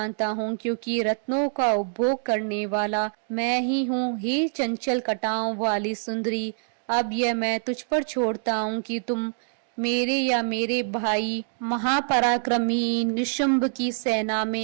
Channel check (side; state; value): left; silent; digital silence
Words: हूँ क्योंकि रत्नों का उपभोग करने वाला मैं ही हूँ। हे चंचल कटाओं वाली सुंदरी, अब यह मैं तुझ पर छोड़ता हूँ कि तुम मेरे या मेरे भाई महापराक्रमी निशुंभ की सेना